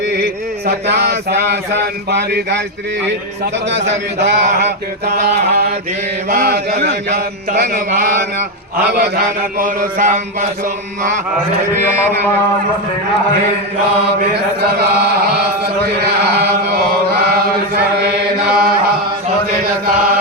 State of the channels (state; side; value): normal; both; correlation 0.07